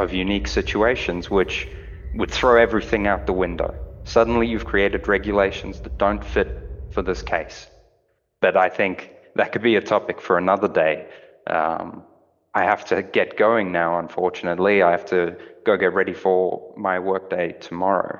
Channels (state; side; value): identical; both; correlation 1.00